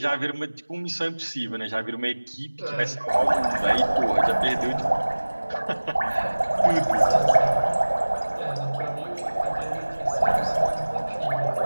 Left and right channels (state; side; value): inverted; both; correlation -1.00